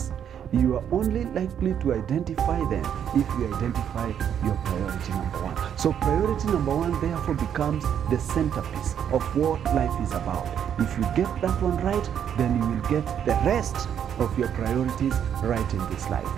you are only likely to identify them if you identify your priority number one. So priority number one therefore becomes the centerpiece of what life is about. If you get that one right, then you will get the rest of your priorities right in this life.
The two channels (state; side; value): quieter; left; 8.9 dB